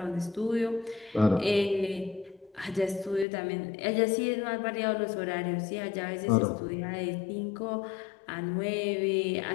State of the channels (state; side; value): drops out; right; at 3.2 s